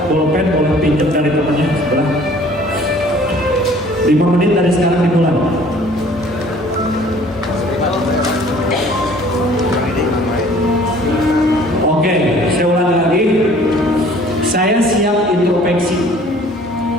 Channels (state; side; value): normal; both; correlation 0.53